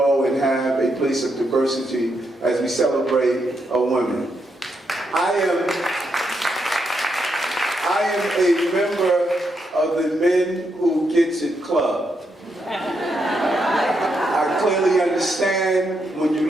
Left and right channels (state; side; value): normal; both; correlation 0.81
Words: and have a place of diversity as we celebrate women. I am a member of the Men Who Gets It Club. I clearly understand when